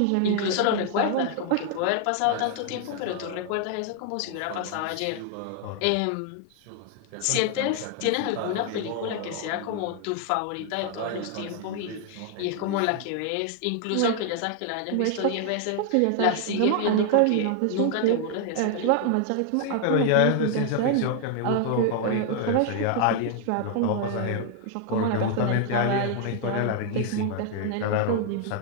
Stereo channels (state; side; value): different; both; correlation 0.00